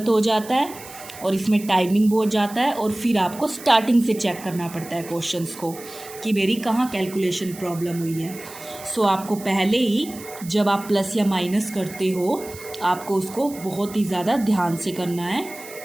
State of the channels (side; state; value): right; noise; hiss, 16 dB below the sound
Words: हो जाता है और इसमें टाइमिंग बहुत जाता है और फिर आपको स्टार्टिंग से चेक करना पड़ता है क्वेश्चंस को कि मेरी कहाँ कैलकुलेशन प्रॉब्लम हुई है। सो आपको पहले ही जब आप प्लस या माइनस करते हो आपको उसको बहुत ही ज़्यादा ध्यान से करना है